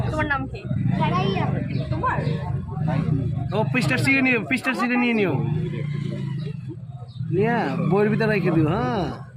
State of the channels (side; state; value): both; identical; correlation 1.00